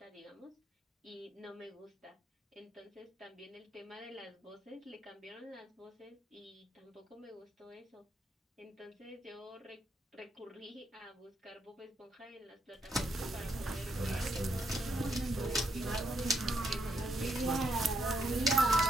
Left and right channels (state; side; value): normal; both; correlation 0.77